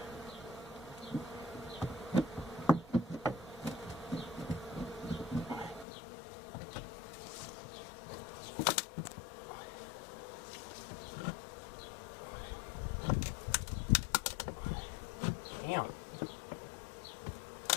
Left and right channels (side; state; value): right; drops out; at 5.9 s